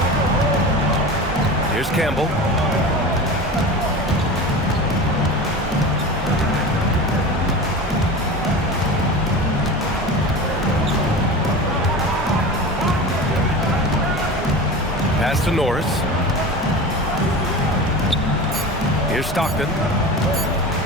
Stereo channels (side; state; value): both; normal; correlation 0.31